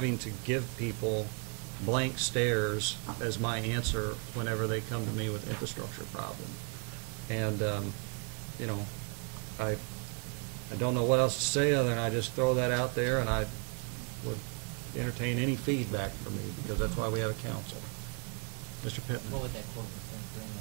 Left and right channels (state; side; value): quieter; left; 37.2 dB